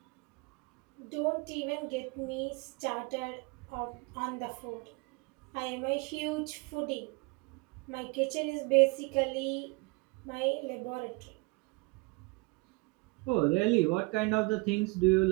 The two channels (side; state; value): left; quieter; 27.6 dB